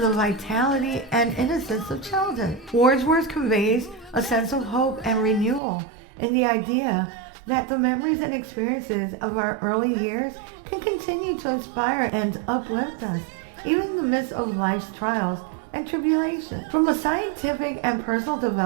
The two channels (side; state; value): left; drops out; at 5.6 s